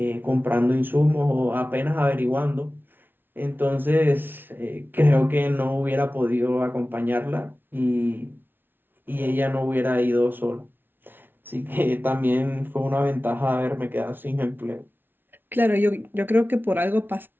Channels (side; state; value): left; late; 0.099 ms